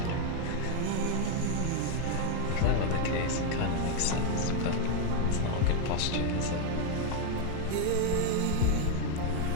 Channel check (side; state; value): both; different; correlation 0.00